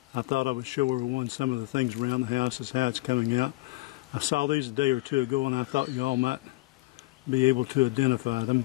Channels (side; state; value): right; quieter; 21.6 dB